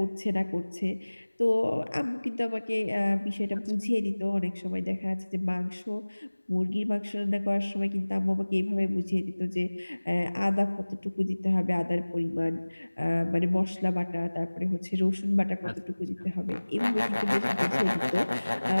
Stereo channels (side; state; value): both; inverted; correlation -1.00